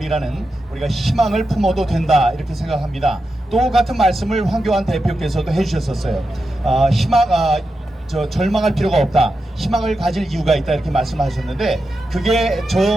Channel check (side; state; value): both; normal; correlation 0.89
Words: 우리가 희망을 품어도 된다 이렇게 생각합니다. 똑같은 말씀을 황교안 대표께서도 해주셨었어요. 절망할 필요가 없다. 희망을 가질 이유가 있다 이렇게 말씀하셨는데 그게